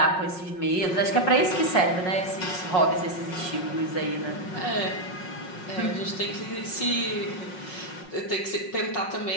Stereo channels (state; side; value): late; right; 5.5 ms